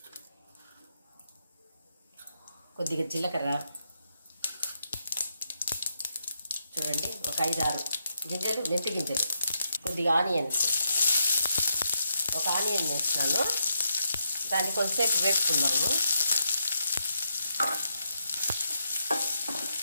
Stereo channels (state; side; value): inverted; both; correlation -0.81